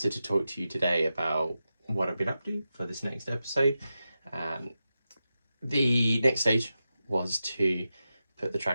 to talk to you today about what I've been up to for this next episode. The next stage was to put the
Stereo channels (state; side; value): inverted; both; correlation -0.91